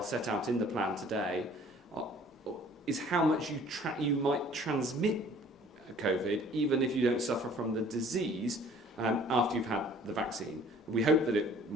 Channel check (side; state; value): both; normal; correlation 0.53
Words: set out in the plan today, is how much you might transmit COVID, even if you don't suffer from the disease after you've had the vaccine. We hope that we